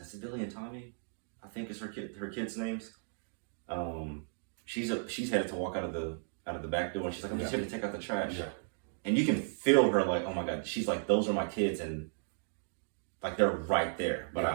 Tommy, I think is her kids' names. She's headed to walk out of the back door, and she's like, I'm just here to take out the trash. Yeah. And you can feel her like, oh my God, she's like, those are my kids, and like they're right there. But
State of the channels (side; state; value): left; silent; digital silence